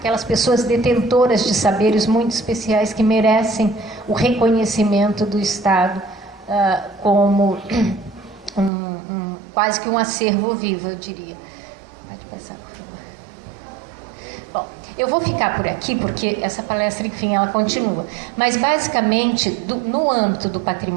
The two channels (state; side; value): drops out; left; at 8.7 s